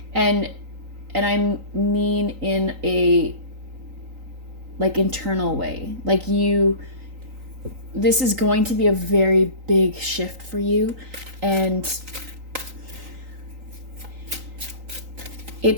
And I mean in a like internal way. Like, this is going to be a very big shift for you, and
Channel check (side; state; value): left; late; 3.9 ms